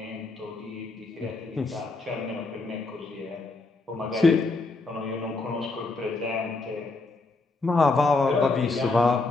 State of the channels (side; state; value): right; quieter; 3.5 dB